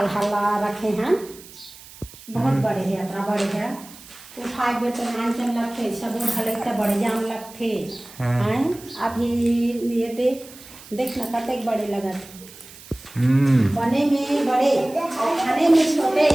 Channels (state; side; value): noise; right; hiss, 19 dB below the sound